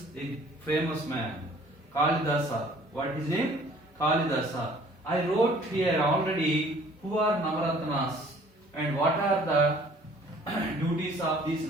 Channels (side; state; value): both; normal; correlation 0.54